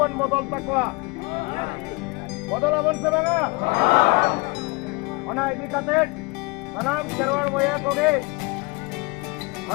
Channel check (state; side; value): quieter; right; 26.5 dB